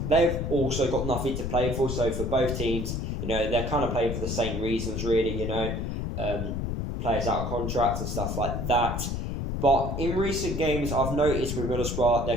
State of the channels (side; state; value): left; noise; rumble, 2 dB below the sound